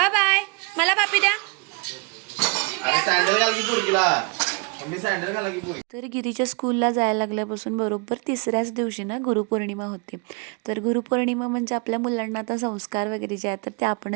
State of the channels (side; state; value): left; quieter; 31.6 dB